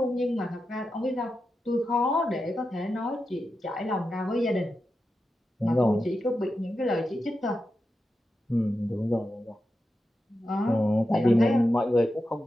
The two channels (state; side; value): normal; both; correlation 0.90